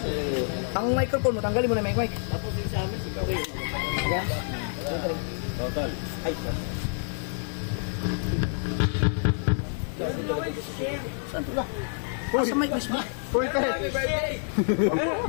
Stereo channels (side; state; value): right; silent; digital silence